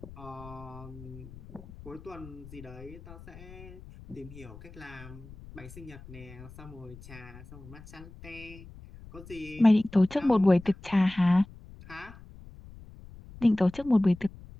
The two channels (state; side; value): noise; left; rumble, 18 dB below the sound